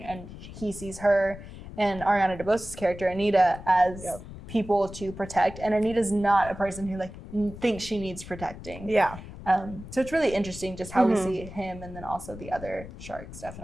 he sees her and Ariana DeBose's character, Anita, as people to protect. And Anita's not a person who, like, thinks she needs protecting. Yeah. So it's really interesting just how we see him, and then also the other sharks,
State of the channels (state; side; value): noise; left; rumble, 13 dB below the sound